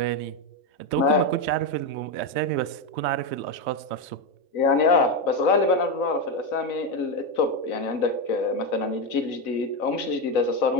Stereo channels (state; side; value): late; right; 3.2 ms